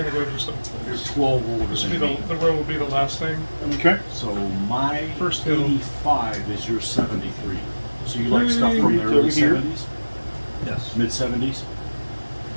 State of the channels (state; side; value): inverted; both; correlation -1.00